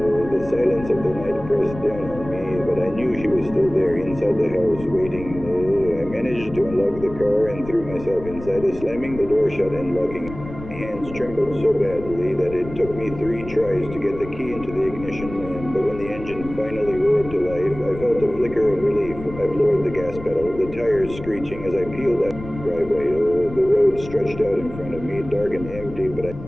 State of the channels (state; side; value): noise; left; rumble, 13 dB below the sound